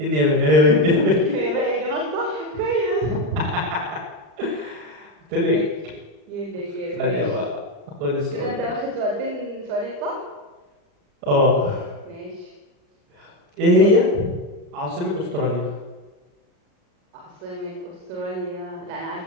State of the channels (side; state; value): left; late; 39 ms